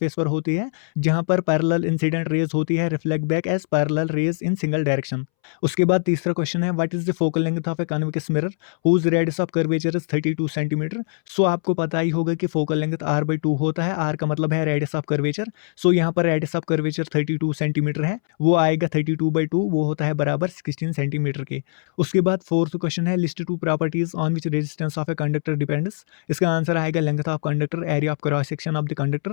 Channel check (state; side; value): silent; right; 64 dB below the other